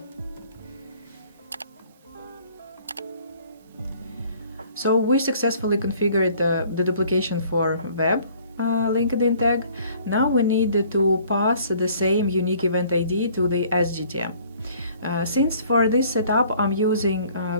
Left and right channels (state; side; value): inverted; both; correlation -0.57